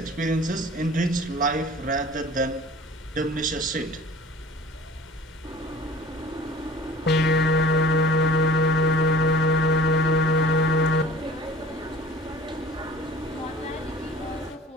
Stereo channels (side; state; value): both; normal; correlation 0.46